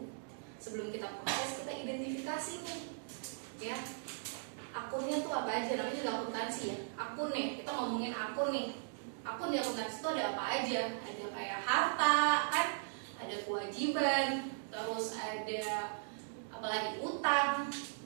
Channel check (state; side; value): silent; left; digital silence